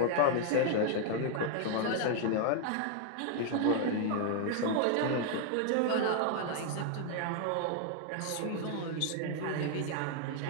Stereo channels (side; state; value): both; different; correlation 0.00